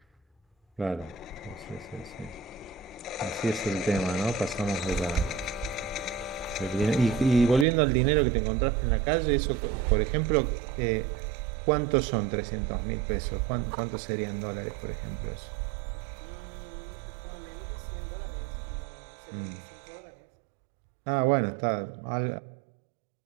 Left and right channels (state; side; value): drops out; left; at 7.7 s